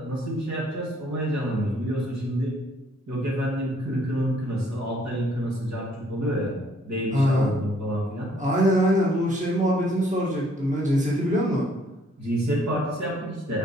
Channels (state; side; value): normal; both; correlation 0.64